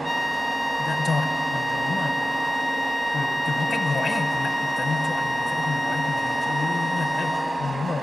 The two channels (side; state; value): both; normal; correlation 0.95